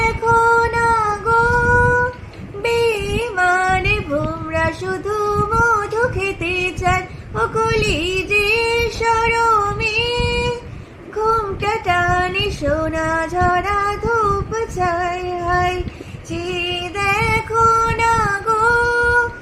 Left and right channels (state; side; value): identical; both; correlation 1.00